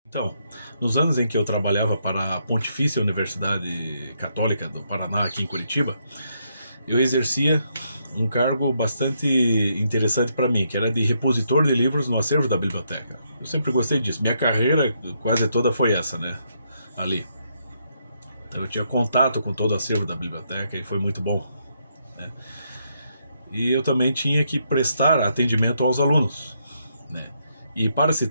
Então, nos anos em que eu trabalhava para a Pontifícia Universidade Católica do Paraná, aqui em Curitiba, eu exercia um cargo bastante interessante para mim, que era de repositor de livros no acervo da biblioteca. Eu sempre gostei disso. Minha carreira quase toda foi essa, né? Ali. Então eu tinha contato com todo o acervo da biblioteca e foi muito bom, né? E eu também tinha que prestar atendimento aos alunos, né? E para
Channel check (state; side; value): inverted; both; correlation -0.76